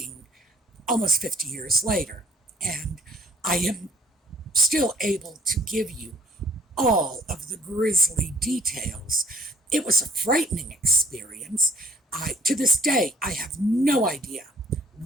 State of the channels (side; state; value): both; normal; correlation 0.56